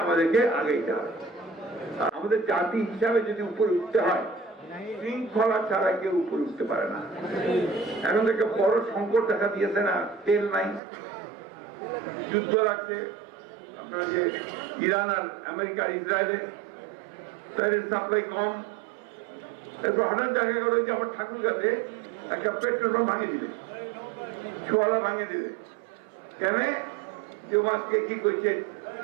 আমাদেরকে আগেইতে হবে। আমাদের জাতি হিসাবে যদি উপরে উঠতে হয়, শৃঙ্খলা ছাড়া কেউ উপরে উঠতে পারে না। এখন থেকে বড় সংকট দেখা দিয়েছে না, তেল নাই, যুদ্ধ লাগছে। আপনার যে ইরান আর আমেরিকা ইসরায়েলে, তেলের সাপ্লাই কম। এরপর হঠাৎ দেখা গেল যে আমার ঠাকুর কাছে একটা পেট্রোল পাম্প ভাঙিয়ে দিবে, ছোয়ালা ভাঙিয়ে দিবে। কেন? যে মাছকে কি করছে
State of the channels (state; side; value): drops out; left; at 10.8 s